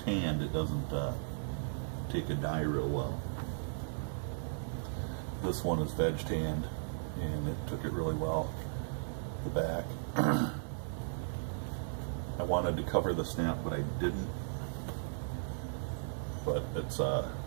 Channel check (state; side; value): silent; left; 54 dB below the other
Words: it doesn't take a dye real well. This one is veg tanned, and it took it really well. The back. I wanted to cover the snap, but I didn't. But it's